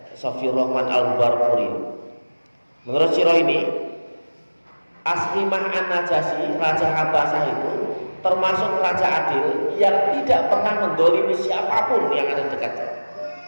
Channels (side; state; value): both; inverted; correlation -1.00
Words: Safiyur Rahman Al-Barfuri. Menurut sirah ini, Ashimah An-Najasyi, Raja Habasah itu termasuk raja adil yang tidak pernah mendolimi siapapun yang ada dekatnya.